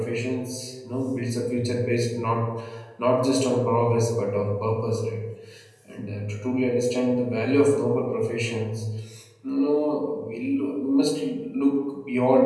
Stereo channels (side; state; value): both; identical; correlation 1.00